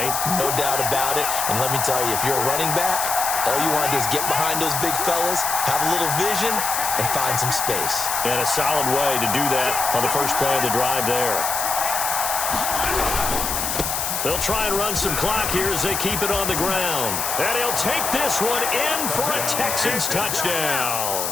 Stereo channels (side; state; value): left; noise; hiss, 2 dB below the sound